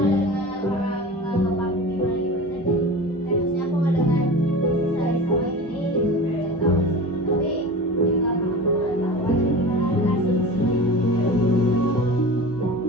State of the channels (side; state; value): both; normal; correlation 0.33